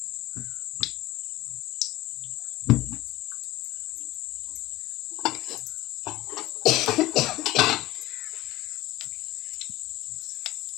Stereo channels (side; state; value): right; quieter; 17.3 dB